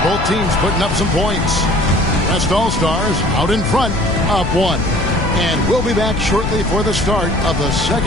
both teams putting up some points. West All-Stars out in front, up 1. And we'll be back shortly for the start of the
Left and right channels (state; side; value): noise; left; rumble, 5 dB below the sound